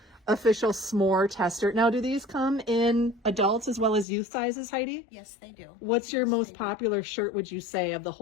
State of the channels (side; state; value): right; drops out; at 4.0 s